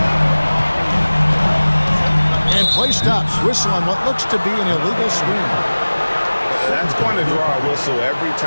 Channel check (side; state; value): both; inverted; correlation -1.00